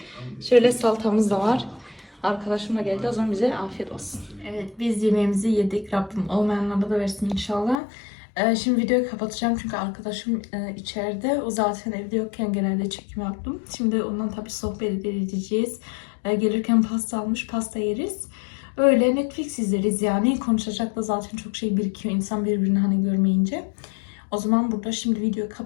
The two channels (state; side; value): drops out; right; at 7.8 s